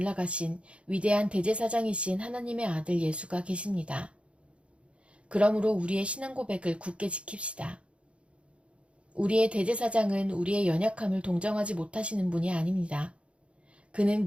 위대한 대제사장이신 하나님의 아들 예수가 계십니다. 그러므로 우리의 신앙 고백을 굳게 지킵시다. 우리의 대제사장은 우리의 연약함을 동정하지 못하시는 분이 아닙니다. 그는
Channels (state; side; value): late; left; 0.060 ms